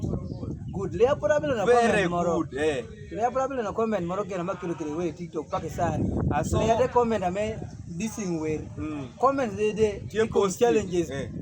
good. Lea probably na comment moro. Lea probably na comment moro kena makilo kile we TikTok pakisani. Lea de comment ame dissing we. Comment de challenges.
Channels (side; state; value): both; identical; correlation 1.00